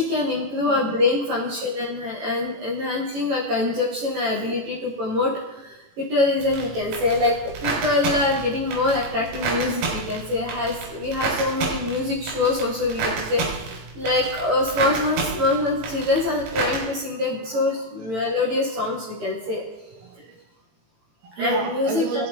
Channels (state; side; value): late; left; 18 ms